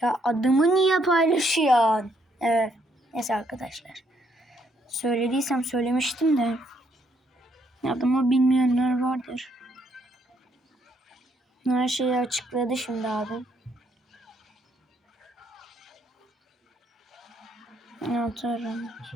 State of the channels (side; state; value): both; normal; correlation 0.72